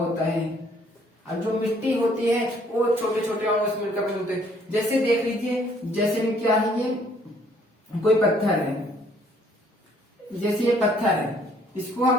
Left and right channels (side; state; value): both; normal; correlation 0.63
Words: है। अब जो मिट्टी होती है वो छोटे छोटे अणुओं से मिलकर बने होते हैं। जैसे देख लीजिए, जैसे क्या है, ये कोई पत्थर है, जैसे ये पत्थर है, इसको